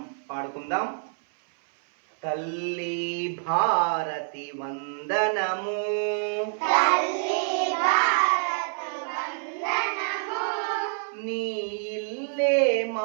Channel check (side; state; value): left; silent; 59 dB below the other